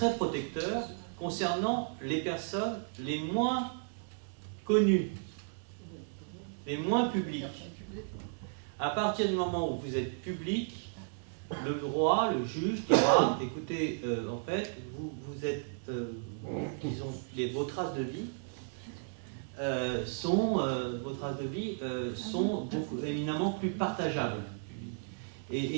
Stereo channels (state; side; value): silent; left; digital silence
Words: protecteur concernant les personnes les moins connues, les moins publics. À partir du moment où vous êtes public, le droit, le juge dira, écoutez, en fait, vous êtes, disons, vos traces de vie sont éminemment plus partageables.